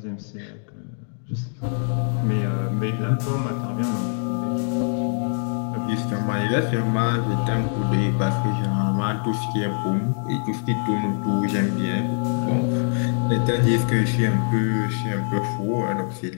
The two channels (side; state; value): right; silent; digital silence